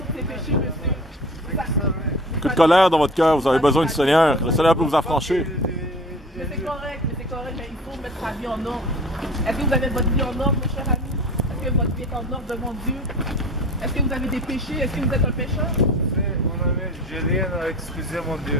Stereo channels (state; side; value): normal; both; correlation 0.40